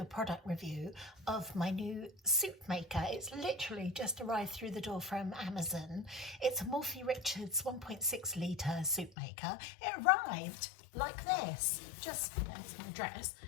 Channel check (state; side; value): drops out; right; at 9.2 s